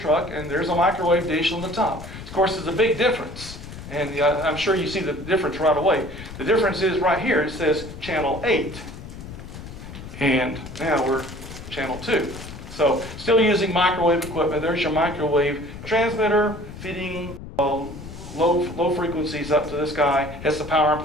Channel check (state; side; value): noise; left; rumble, 12 dB below the sound